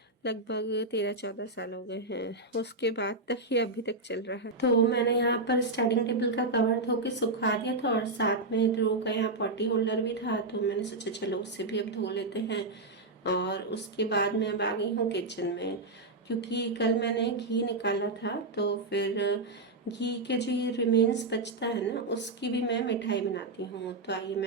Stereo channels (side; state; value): left; quieter; 3.1 dB